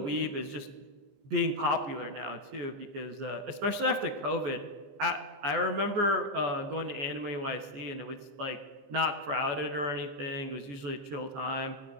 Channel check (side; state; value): left; late; 15 ms